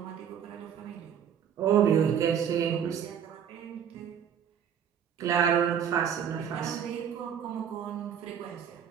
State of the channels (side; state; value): left; quieter; 8.5 dB